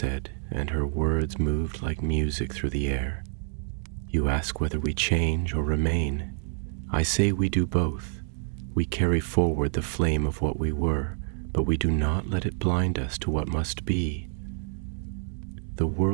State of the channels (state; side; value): silent; left; 60 dB below the other